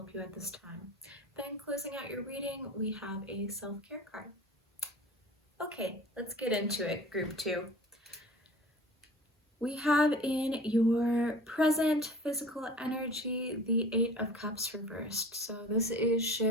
you at this time. Then closing out your reading, we have a self-care card. Okay, let's get into it, Group 2. We have in your present physical energy the Eight of Cups reversed. So this is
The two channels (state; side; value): normal; both; correlation 0.42